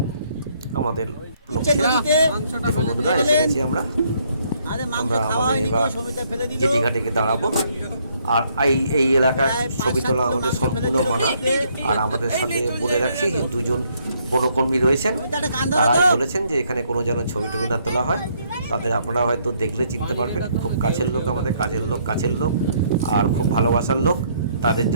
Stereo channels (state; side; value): inverted; both; correlation -0.69